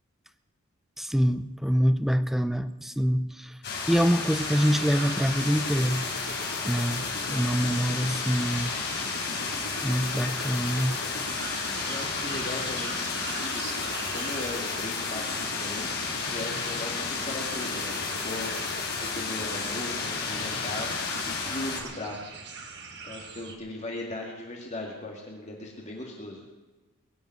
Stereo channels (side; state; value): both; normal; correlation 0.64